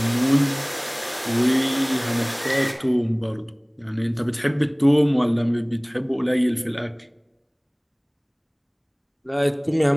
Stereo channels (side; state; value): both; identical; correlation 1.00